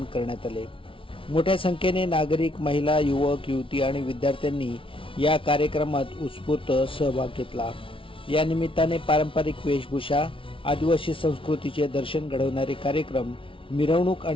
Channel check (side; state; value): right; late; 0.25 ms